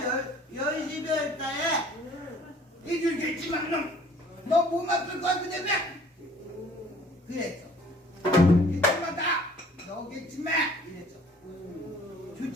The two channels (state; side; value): normal; both; correlation 0.54